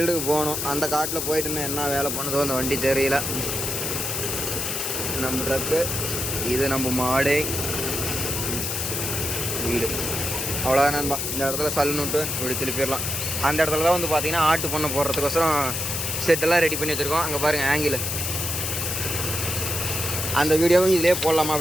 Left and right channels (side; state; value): left; noise; hiss, 2 dB below the sound